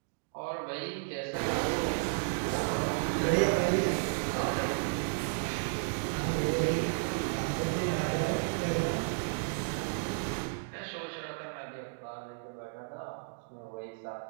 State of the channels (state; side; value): silent; left; digital silence